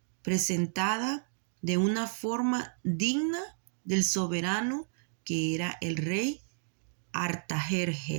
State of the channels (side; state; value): left; silent; digital silence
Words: presentada de una forma digna del soberano que era el rey